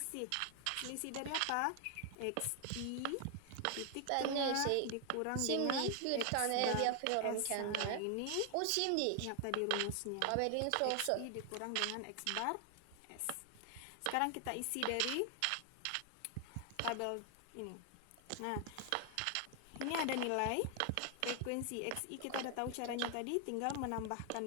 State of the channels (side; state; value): both; different; correlation 0.00